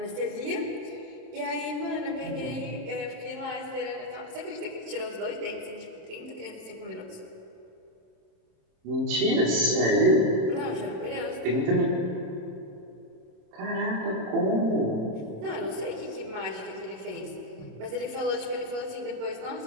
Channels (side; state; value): left; late; 27 ms